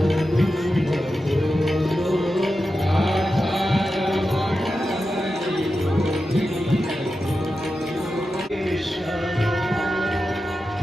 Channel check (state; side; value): normal; both; correlation 0.91